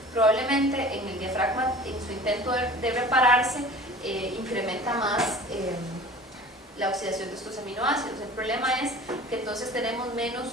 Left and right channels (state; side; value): normal; both; correlation 0.42